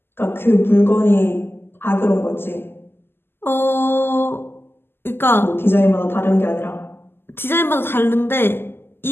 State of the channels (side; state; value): right; late; 0.11 ms